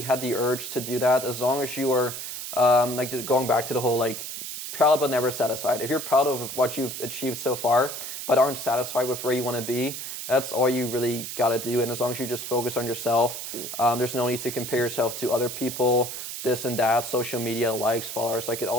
had the urge to do that. As long as you are like going back to the whole like proud but never satisfied. If you're proud of what you've achieved so far but aren't satisfied with where you want to be, that's all you really got to do. And as long as you just focus on yourself, there's no need to compare yourself to other people, this and that, social media, likes, followers. Like it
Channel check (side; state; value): right; noise; hiss, 7 dB below the sound